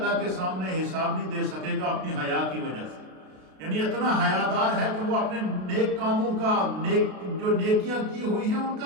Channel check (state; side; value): late; left; 32 ms